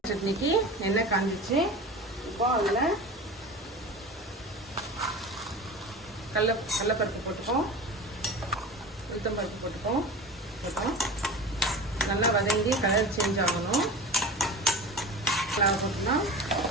சட்னிக்கு எண்ணெய் காஞ்சிச்சு. இப்போ அதில் கடலைப்பருப்பு போட்டுப்போம், உளுத்தம்பருப்பு போட்டுப்போம். நல்லா வதங்கி கலர் சேஞ்ச் ஆகணும். போட்டுக்கலாம்.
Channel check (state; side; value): normal; both; correlation 0.33